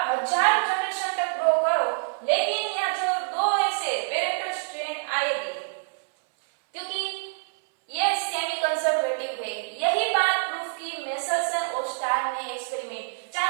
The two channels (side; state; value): left; silent; 61 dB below the other